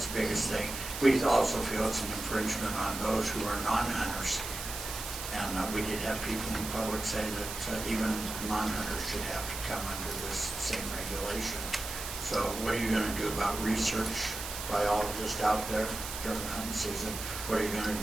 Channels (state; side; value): noise; right; hiss, 7 dB below the sound